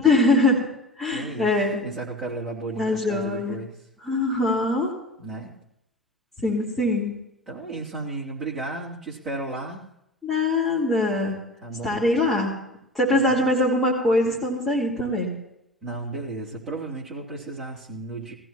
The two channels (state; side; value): normal; both; correlation 0.35